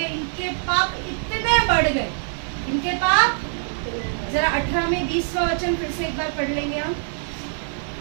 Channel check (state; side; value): silent; left; 63 dB below the other